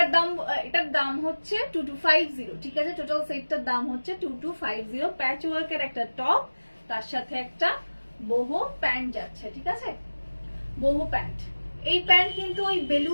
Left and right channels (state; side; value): inverted; both; correlation -1.00